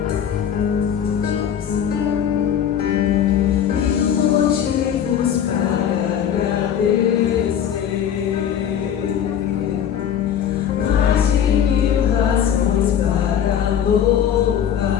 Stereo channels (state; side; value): quieter; right; 9.2 dB